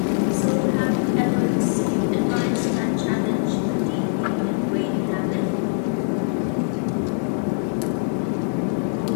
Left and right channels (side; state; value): right; silent; digital silence